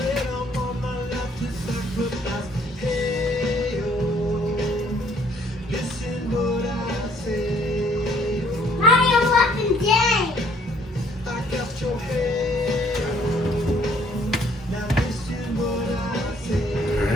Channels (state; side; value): normal; both; correlation 0.61